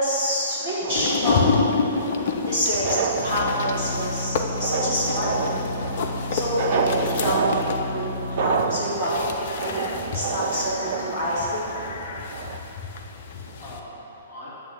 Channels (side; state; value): both; inverted; correlation -0.48